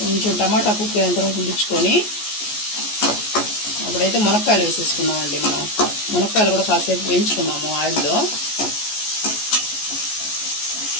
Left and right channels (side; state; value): right; late; 14 ms